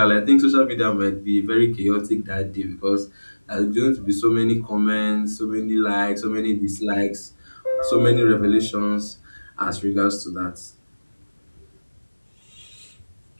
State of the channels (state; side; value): inverted; both; correlation -1.00